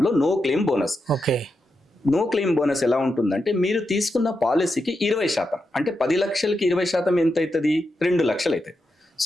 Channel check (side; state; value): both; normal; correlation 0.86